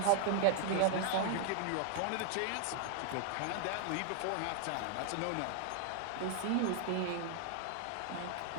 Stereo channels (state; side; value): different; both; correlation 0.00